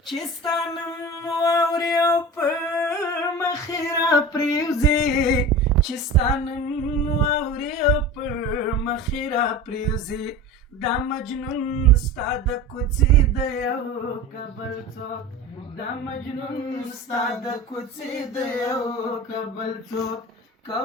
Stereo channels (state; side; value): normal; both; correlation 0.33